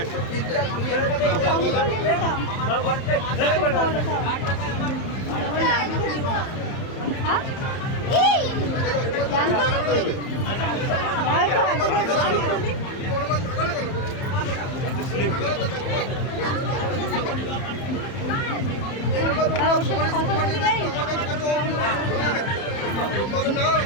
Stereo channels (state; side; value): late; right; 30 ms